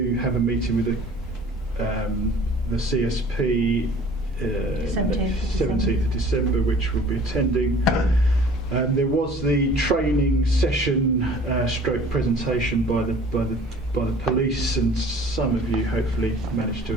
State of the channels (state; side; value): normal; both; correlation 0.48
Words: have a meeting with the CSP 17th of December, which we'll be attending. There was the training session stroke presentation by the police, and some of you hopefully managed to